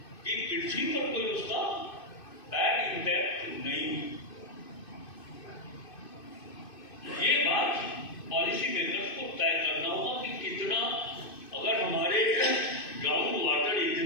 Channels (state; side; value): late; right; 2.5 ms